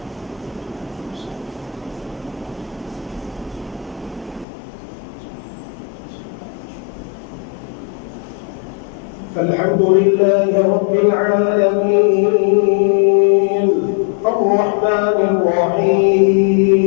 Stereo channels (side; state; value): right; drops out; at 4.5 s